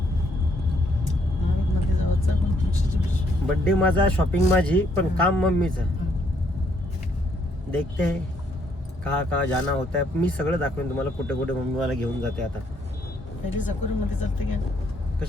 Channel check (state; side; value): normal; both; correlation 0.70